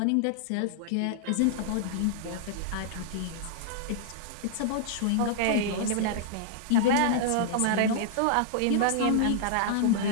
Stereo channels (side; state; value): both; different; correlation -0.01